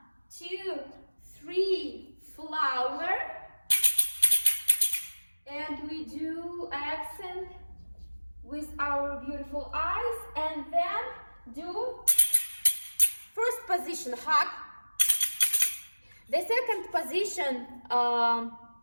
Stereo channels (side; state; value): both; inverted; correlation -1.00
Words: 2, 3, flower. And we do accent with our beautiful eyes, and then do first position, hug. The second position,